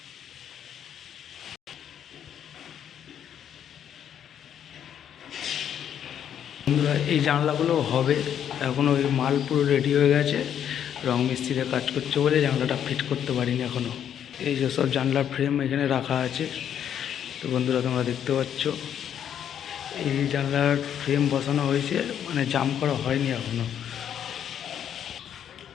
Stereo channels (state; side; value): quieter; right; 9.4 dB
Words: বন্ধুরা এই জানলাগুলো হবে, এখনও ওই মাল পুরো রেডি হয়ে গেছে, রং মিস্ত্রিতে কাজ করছে বলে জানলাটা ফিট করতে পারিনি এখনও। এই যে সব জানলার ফ্রেম এখানে রাখা আছে, তো বন্ধুরা তোমরা দেখতে পাচ্ছ এই জানলার ফ্রেম বসানো হয়েছে, মানে জাম করা হয়নি এখনও।